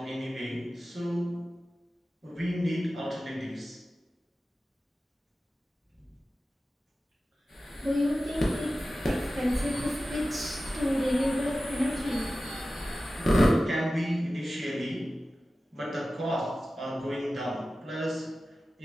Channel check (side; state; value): both; normal; correlation 0.95